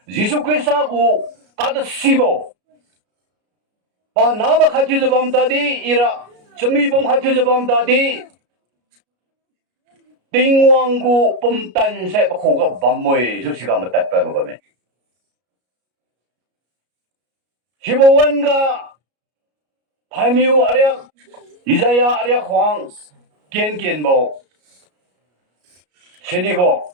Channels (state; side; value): late; left; 33 ms